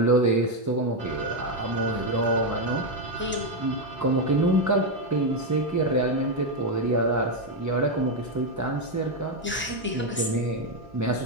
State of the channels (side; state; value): both; normal; correlation 0.04